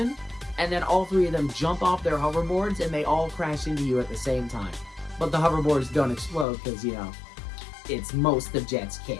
and then all 3 of them jump off their hoverboards and they all crash into you at the same time. But the hoverboards don't explode because, you know, it's most of Jet's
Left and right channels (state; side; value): drops out; right; at 6.5 s